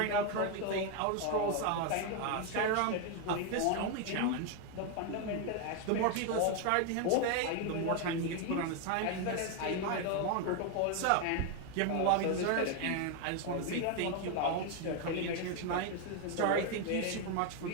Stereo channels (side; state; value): both; different; correlation 0.01